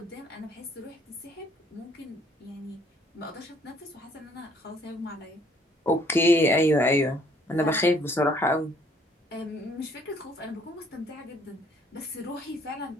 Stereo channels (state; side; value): normal; both; correlation 0.61